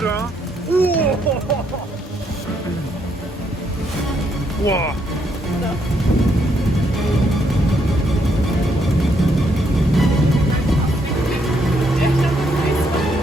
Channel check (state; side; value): normal; both; correlation 0.74